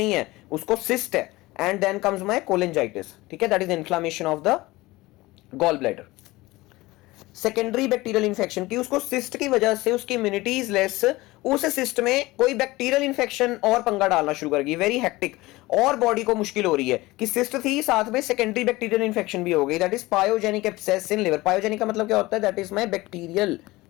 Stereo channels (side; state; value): right; quieter; 20.1 dB